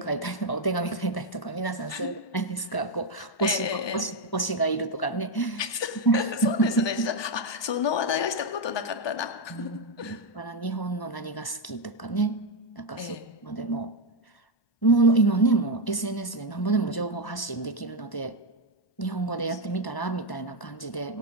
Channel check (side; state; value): right; late; 1.0 ms